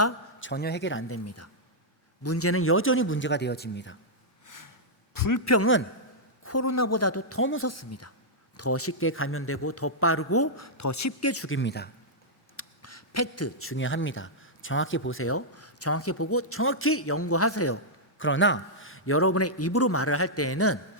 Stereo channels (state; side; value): normal; both; correlation -0.09